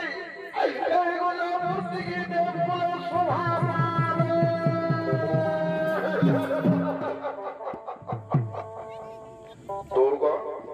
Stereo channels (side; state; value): both; identical; correlation 1.00